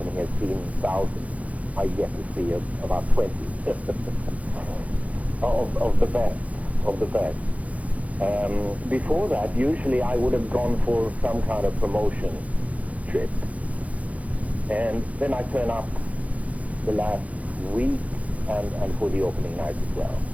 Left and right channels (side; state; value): left; late; 0.068 ms